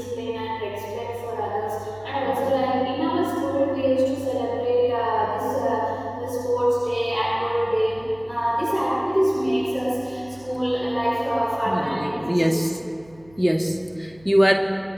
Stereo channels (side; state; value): right; noise; hum, 26 dB below the sound